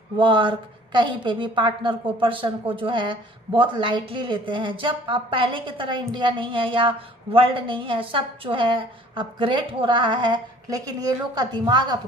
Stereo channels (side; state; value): both; normal; correlation 0.52